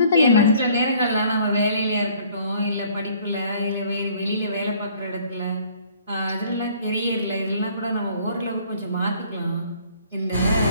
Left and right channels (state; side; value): inverted; both; correlation -0.57